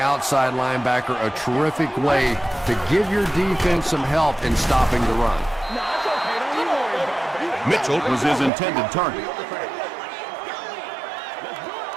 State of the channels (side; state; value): left; drops out; at 8.5 s